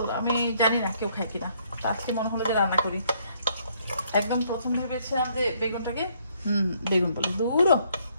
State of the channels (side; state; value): both; inverted; correlation -0.68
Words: আমি জানি না কেউ খায় কিনা, তো আজকে মনে হলো যে রান্না করি। একদম প্রথম ভেবেছিলাম যে বেগুনটাকে বেগুন বলে দূরও